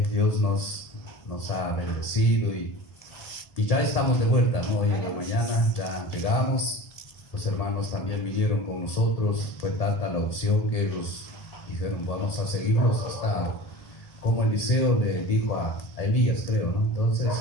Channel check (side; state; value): right; late; 1.8 ms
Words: Dios nos ha bendecido y ya estamos de vuelta, ¿no? Hoy en la mañana ya llegamos. Los hermanos también vinieron con nosotros. Fue tanta la opción que ellos dijeron, vamos a seguirlos hasta, como Eliseo le dijo a Elías, creo, ¿no? Entonces